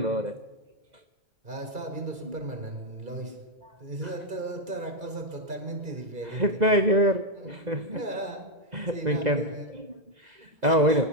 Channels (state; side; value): late; left; 2.3 ms